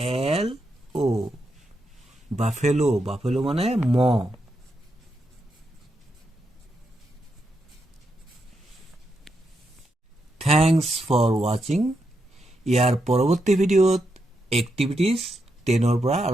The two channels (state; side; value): normal; both; correlation 0.83